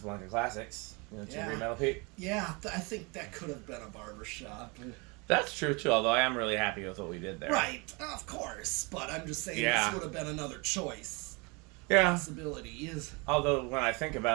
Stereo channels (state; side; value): quieter; left; 29.1 dB